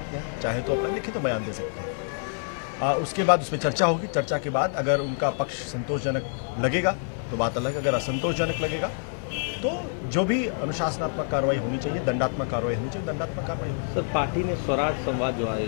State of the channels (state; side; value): silent; right; 60 dB below the other